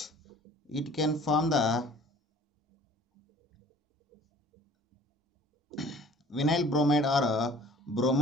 it can form the vinyl bromide or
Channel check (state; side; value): normal; both; correlation 0.49